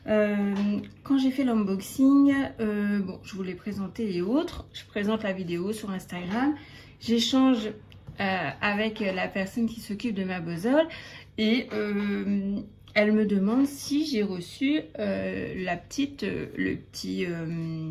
Quand j'ai fait l'unboxing, bon, je vous l'ai présenté et autres. Je présente la vidéo sur Instagram. J'échange avec la personne qui s'occupe de ma bozole et elle me demande si j'ai reçu le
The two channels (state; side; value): identical; both; correlation 1.00